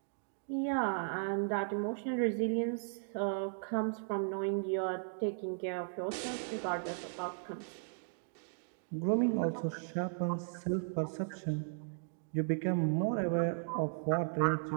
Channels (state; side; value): silent; left; digital silence